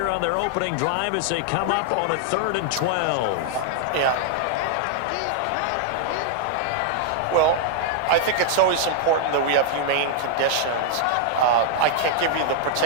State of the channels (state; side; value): different; both; correlation -0.01